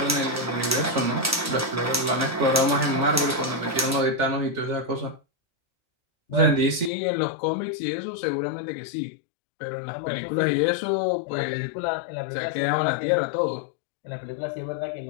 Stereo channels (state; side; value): drops out; right; at 6.9 s